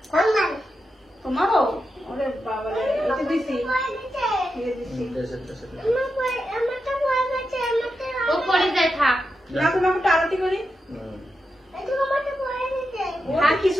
তোমারও? ওরে বাবা রে, এটা দিছি, ও পড়ে যায় থাক। না তোমাকে একটু আরতি করি। থাক, কিছু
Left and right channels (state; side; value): normal; both; correlation 0.88